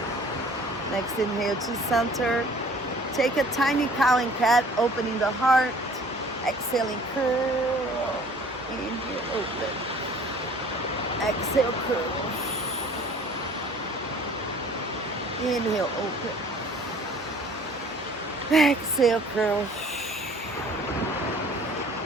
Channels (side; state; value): both; normal; correlation 0.51